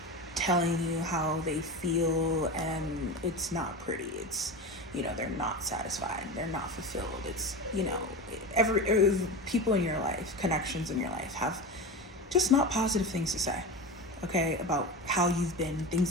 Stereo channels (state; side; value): normal; both; correlation 0.24